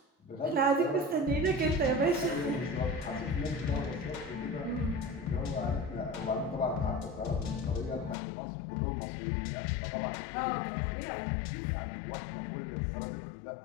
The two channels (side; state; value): right; drops out; at 8.2 s